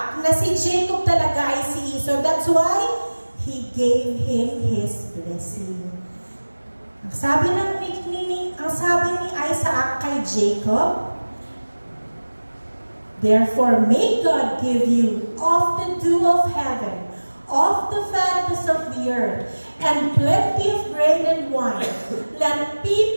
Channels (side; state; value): both; inverted; correlation -1.00